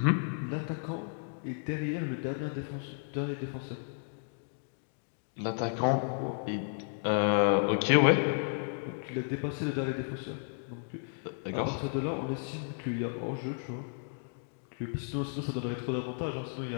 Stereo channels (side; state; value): right; silent; digital silence